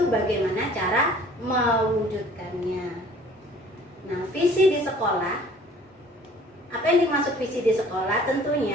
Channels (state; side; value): normal; both; correlation 0.52